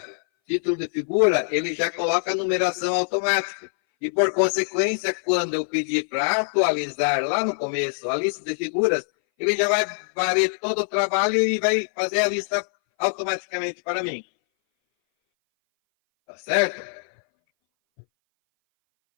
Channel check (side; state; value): right; silent; 59 dB below the other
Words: título de figura, ele já coloca a numeração automática. E, por consequência, quando eu pedir para atualizar lá no começo a lista de figuras, ele já vai varrer todo o trabalho e vai fazer a lista automaticamente para mim. Tá certo?